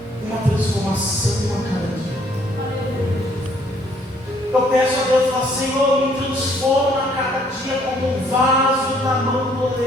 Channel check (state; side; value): normal; both; correlation 0.64